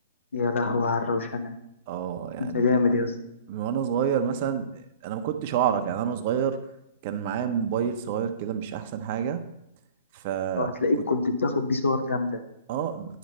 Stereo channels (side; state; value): both; inverted; correlation -0.48